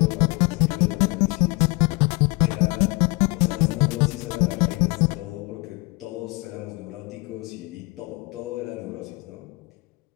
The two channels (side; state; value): right; quieter; 27.1 dB